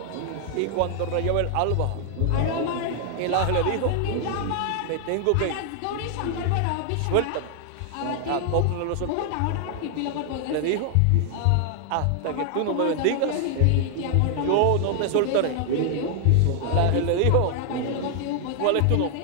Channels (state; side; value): different; both; correlation 0.00